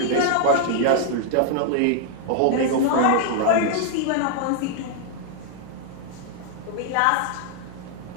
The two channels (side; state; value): both; different; correlation 0.00